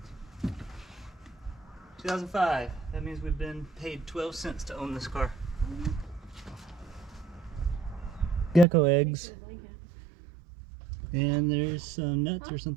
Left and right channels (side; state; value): left; drops out; at 8.7 s